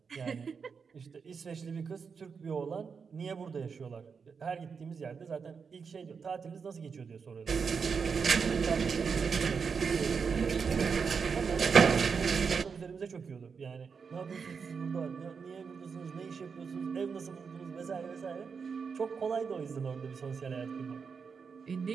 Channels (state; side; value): quieter; left; 5.8 dB